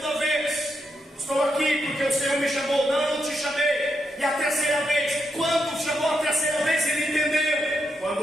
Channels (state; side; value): normal; both; correlation 0.82